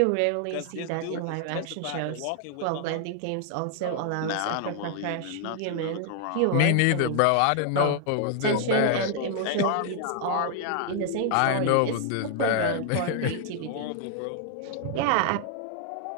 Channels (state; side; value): different; both; correlation 0.00